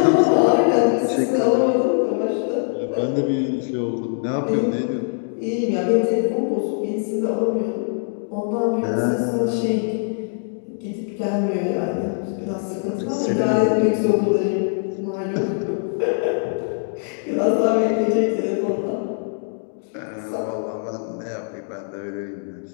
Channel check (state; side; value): silent; right; digital silence